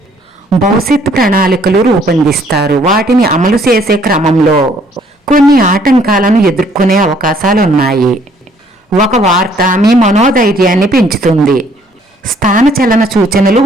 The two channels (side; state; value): both; normal; correlation 0.63